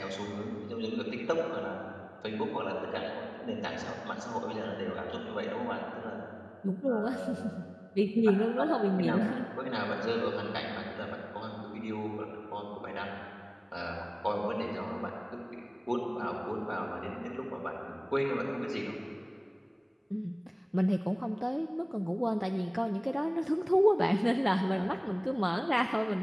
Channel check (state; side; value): identical; both; correlation 1.00